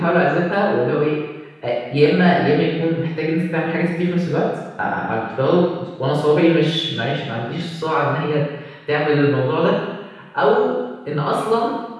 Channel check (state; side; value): identical; both; correlation 1.00